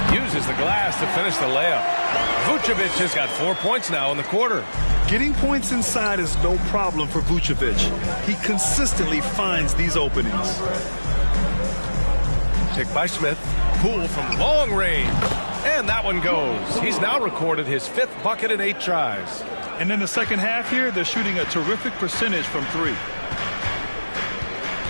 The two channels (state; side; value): inverted; both; correlation -1.00